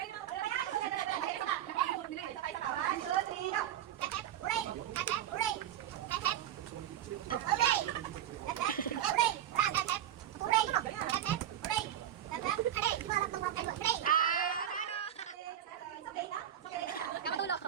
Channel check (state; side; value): quieter; left; 10.9 dB